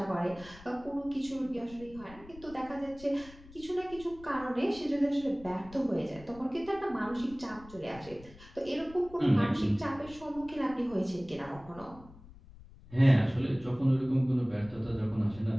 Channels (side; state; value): left; noise; rumble, 20 dB below the sound